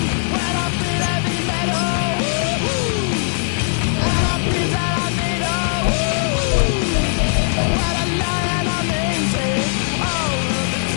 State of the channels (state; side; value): silent; right; digital silence